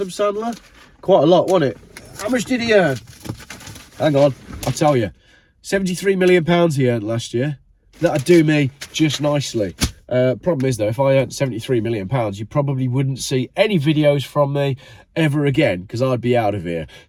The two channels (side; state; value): both; identical; correlation 1.00